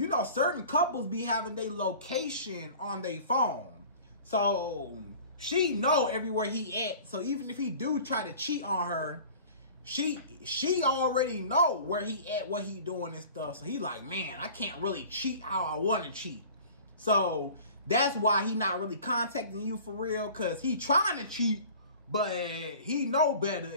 certain couples be having their location on their phone. So she know everywhere he at. So even if he do try to cheat on her, she already know where he at, what he doing and stuff. So he like, man, I can't really cheat how I want to cheat. So that's why he not really contacting you for real, because he trying to cheat, but he know better.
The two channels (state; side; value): inverted; both; correlation -0.43